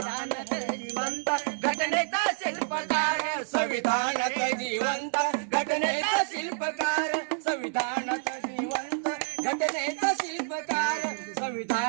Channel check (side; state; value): left; silent; digital silence